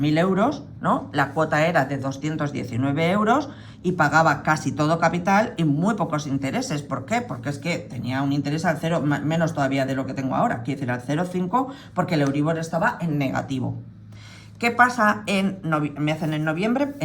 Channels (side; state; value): both; identical; correlation 1.00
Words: euros, ¿no? La cuota era de 219 euros y pagaba casi todo capital y muy pocos intereses. ¿Por qué? Porque es que tenía un interés al cero, menos todavía de lo que tengo ahora, quiero decir al 0,5, porque el Euribor estaba en negativo. ¿Qué pasa me hacen en noviembre?